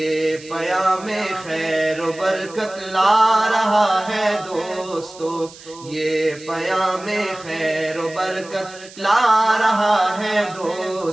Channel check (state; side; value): noise; right; hiss, 19 dB below the sound